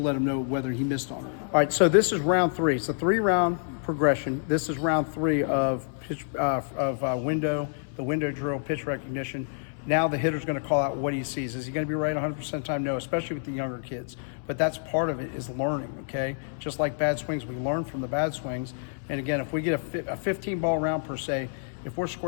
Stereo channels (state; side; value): silent; right; 59 dB below the other